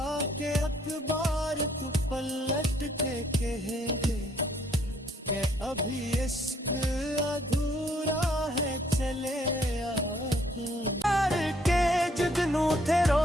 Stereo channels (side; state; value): both; normal; correlation 0.66